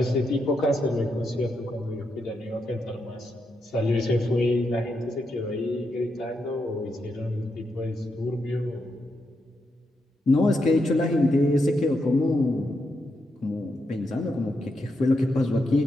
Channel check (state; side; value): normal; both; correlation 0.83